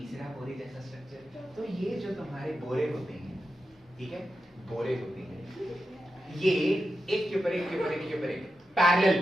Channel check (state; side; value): normal; both; correlation 0.89